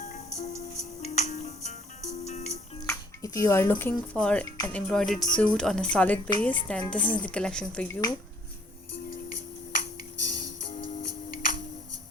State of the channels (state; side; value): normal; both; correlation 0.60